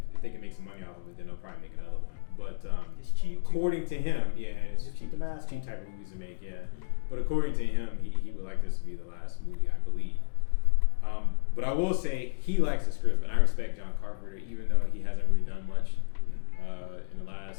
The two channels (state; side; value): silent; right; digital silence